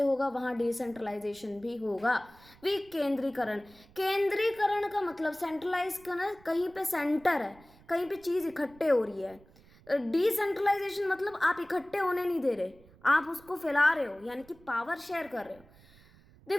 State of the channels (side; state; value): right; noise; rumble, 26 dB below the sound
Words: होगा वहाँ डिसेंट्रलाइजेशन भी होगा। विकेंद्रीकरण, केंद्रीकरण का मतलब सेंट्रलाइज करना, कहीं पे सेंटर है, कहीं पे चीज इकट्ठे हो रही है। डिसेंट्रलाइजेशन मतलब आप इकट्ठे होने नहीं दे रहे, आप उसको फैला रहे हो, यानी कि पावर शेयर कर रहे हो।